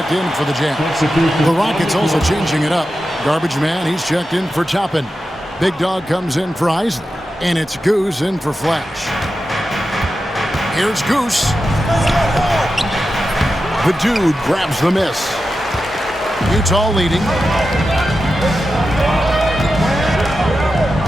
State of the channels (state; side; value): normal; both; correlation 0.91